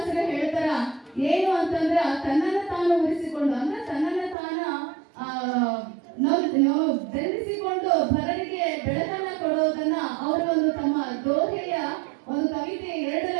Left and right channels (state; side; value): drops out; left; at 4.4 s